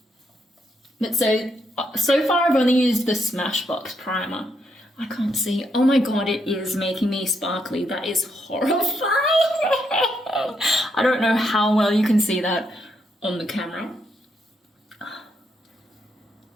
But so far I've only used the Smashbox primer. I can't see. Oh my god, it is making me sparkly. That is horrifying. I don't know how well you can see that on the camera.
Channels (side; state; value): both; normal; correlation 0.78